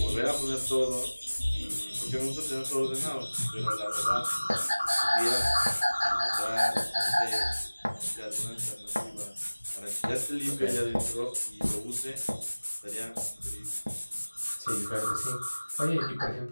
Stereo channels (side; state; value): both; inverted; correlation -1.00